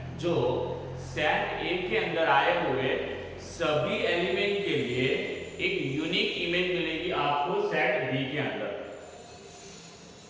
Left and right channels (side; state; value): both; identical; correlation 1.00